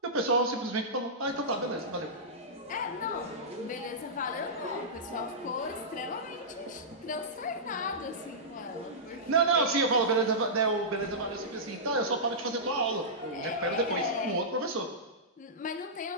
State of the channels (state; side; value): normal; both; correlation -0.15